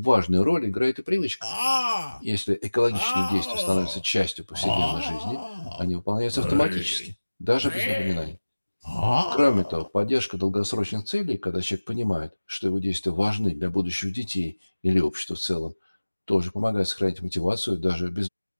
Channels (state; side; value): inverted; both; correlation -1.00